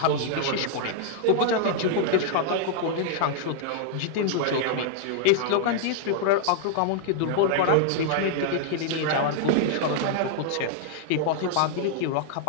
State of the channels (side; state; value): both; different; correlation -0.01